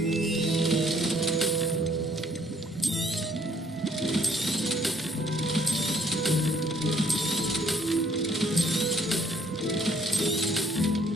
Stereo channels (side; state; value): both; normal; correlation 0.64